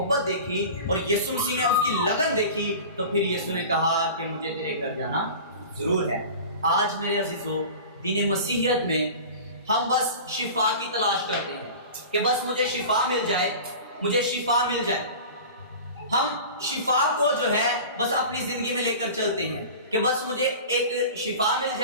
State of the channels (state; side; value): inverted; both; correlation -0.36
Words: دیکھی اور یسوع مسیح نے اس کی لگن دیکھی، تو پھر یسوع نے کہا کہ مجھے تیرے گھر جانا ضرور ہے۔ آج میرے عزیزو دین مسیحیت میں ہم بس شفا کی تلاش کرتے ہیں کہ بس مجھے شفا مل جائے، مجھے شفا مل جائے۔ ہم شفا کو جو ہے بس اپنی زندگی میں لے کر چلتے ہیں کہ بس مجھے ایک شفا مل